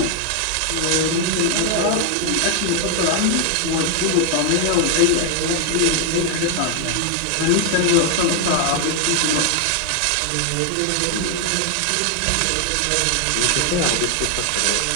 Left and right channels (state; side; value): different; both; correlation 0.01